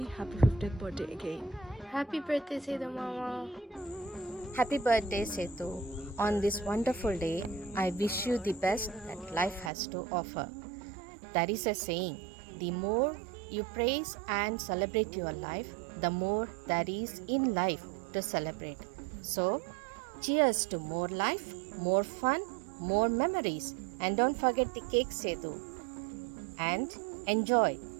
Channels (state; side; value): drops out; left; at 9.7 s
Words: happy 50th birthday again. Happy birthday, Sedu Mama. Happy birthday, Setu. On this wonderful day, I wish you the best that life has to offer. There is a saying, the more you praise and celebrate your life, the more there is in life to celebrate. So, cheers to more life, more fun, more memories. And don't forget the cake, Setu. And enjoy